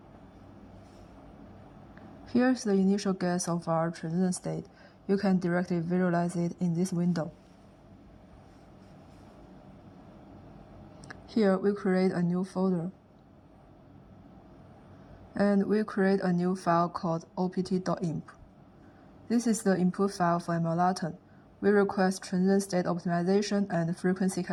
Here's the initial guess of our transition state. You can directly visualize it in this window. Here we create a new folder. And we create a new file called opt.imp. This is the input file for MLATON. We request transition state optimization and frequency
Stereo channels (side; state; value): both; identical; correlation 1.00